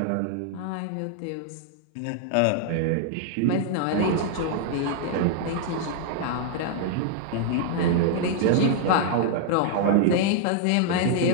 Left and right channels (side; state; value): both; different; correlation -0.01